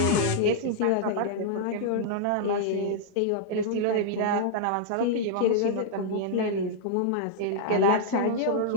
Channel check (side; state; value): both; different; correlation -0.02